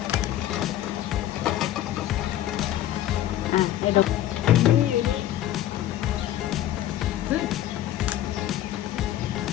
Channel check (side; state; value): right; quieter; 12.8 dB